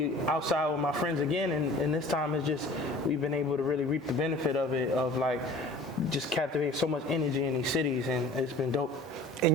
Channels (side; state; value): both; normal; correlation 0.45